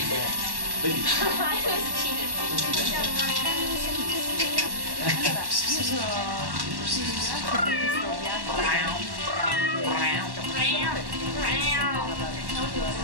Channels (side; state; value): left; late; 1.1 ms